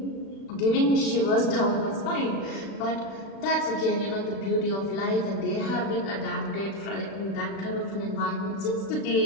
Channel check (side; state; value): right; late; 36 ms